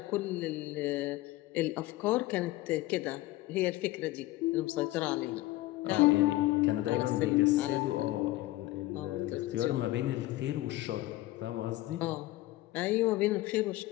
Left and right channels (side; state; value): right; quieter; 17.7 dB